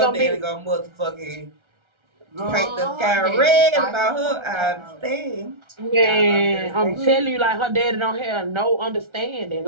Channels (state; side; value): late; left; 1.3 ms